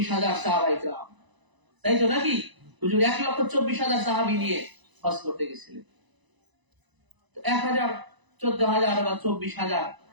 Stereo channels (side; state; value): left; late; 1.0 ms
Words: সাহাবায়ে কেরাম, তাই তো নাকি? হুজুর 1,24,000 সাহাবী নিয়ে হজ করতে গেছিলেন। 1,000, 14,000 বা 24,000